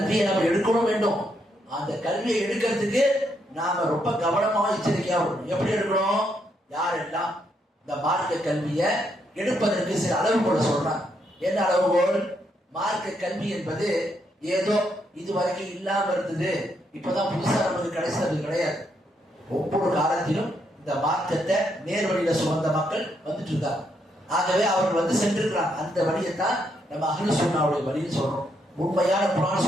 நம்ம எடுக்கணும் வேண்டும். அந்த கல்வியை எடுக்கிறதுக்கு நாம ரொம்ப கவனமாக எச்சரிக்கையா இருக்கணும். எப்படி எடுக்கணும், யாரெல்லாம் இந்த மார்க்க கல்வியை எடுப்பதற்கு சில அளவுகோலை சொல்றாங்க. என்ன அளவுகோல், மார்க்க கல்வி என்பது ஏதோ இதுவரைக்கும் இல்லாம இருந்தது, இப்பதான் புதுசா நமக்கு கிடைச்சது கிடையாது. ஒவ்வொரு காலத்திலும் இந்த மார்க்கத்தை நேர் வழியில சுமந்த மக்கள் வந்துட்டு இருக்காங்க. ஆகவே அவர்கள் சென்றிருக்கிறாங்க. அந்த வழியை தான் நம்ம அஹ்லு சுன்னாவுடைய வழின்னு சொல்றோம். உண்மையான குர்ஆன்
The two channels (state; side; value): normal; both; correlation 0.77